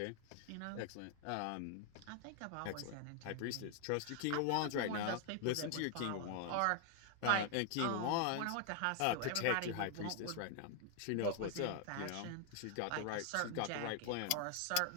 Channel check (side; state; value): both; different; correlation 0.00